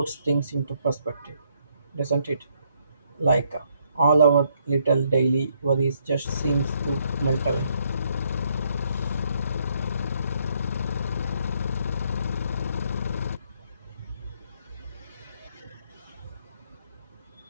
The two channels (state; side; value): inverted; both; correlation -0.72